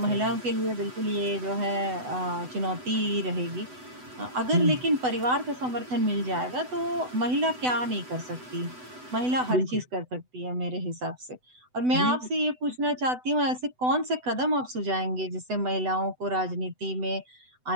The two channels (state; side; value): late; left; 8.0 ms